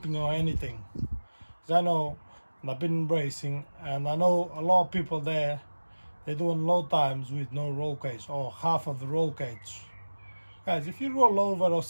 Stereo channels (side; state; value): both; inverted; correlation -1.00